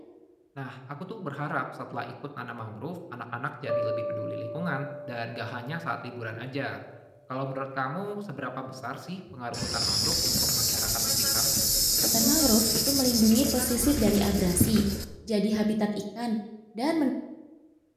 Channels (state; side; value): identical; both; correlation 1.00